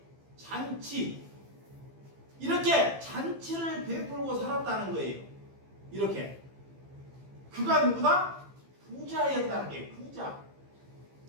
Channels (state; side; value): late; left; 15 ms